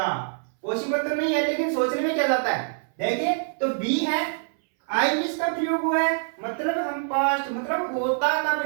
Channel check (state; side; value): silent; left; 62 dB below the other